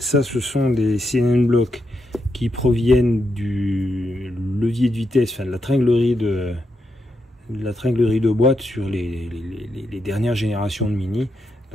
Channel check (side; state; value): both; normal; correlation 0.83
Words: ce sont des CNN Block qui proviennent du levier de vitesse, enfin de la tringlerie de boîte sur les dernières générations de Mini.